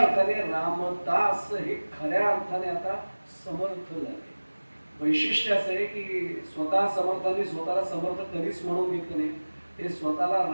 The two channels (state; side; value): inverted; both; correlation -1.00